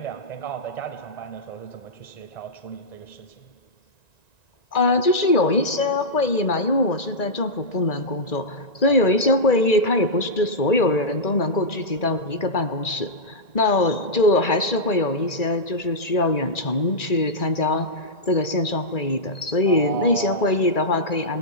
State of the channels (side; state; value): right; late; 1.9 ms